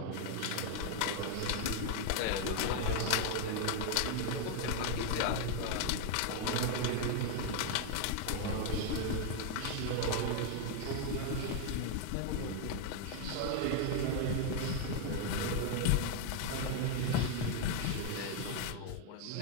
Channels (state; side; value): different; both; correlation 0.01